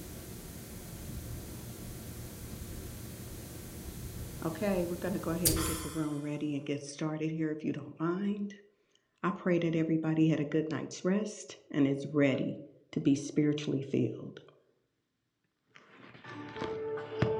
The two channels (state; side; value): identical; both; correlation 1.00